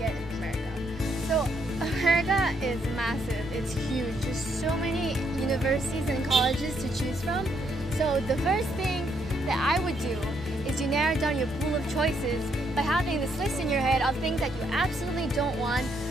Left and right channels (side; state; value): both; normal; correlation 0.74